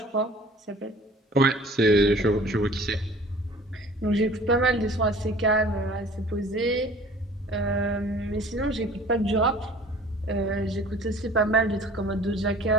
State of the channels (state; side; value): normal; both; correlation 0.48